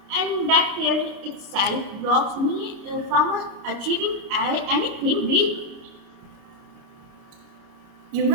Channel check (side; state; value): left; late; 29 ms